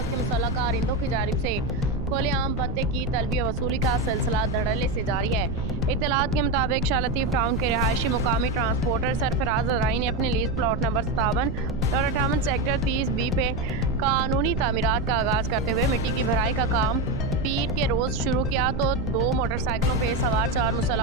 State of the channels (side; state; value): right; noise; rumble, 5 dB below the sound